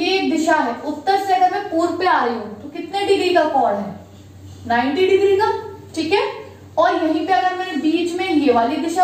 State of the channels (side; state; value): both; identical; correlation 1.00